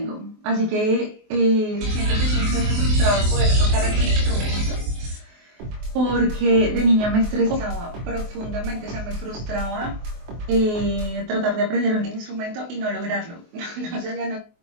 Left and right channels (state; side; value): late; left; 24 ms